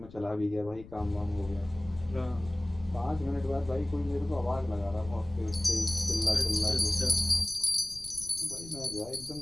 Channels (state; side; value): noise; left; rumble, 18 dB below the sound